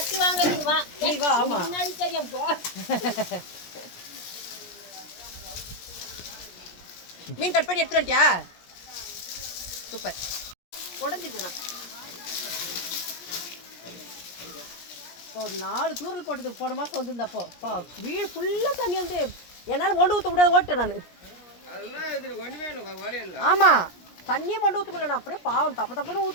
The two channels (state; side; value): late; right; 17 ms